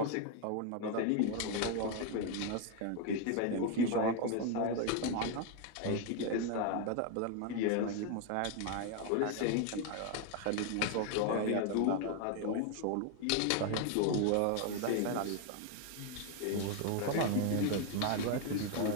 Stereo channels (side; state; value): both; different; correlation 0.01